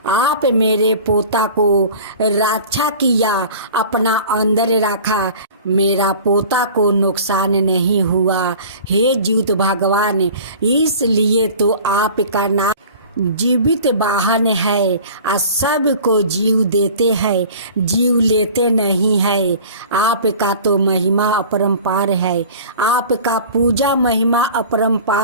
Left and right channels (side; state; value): both; inverted; correlation -0.42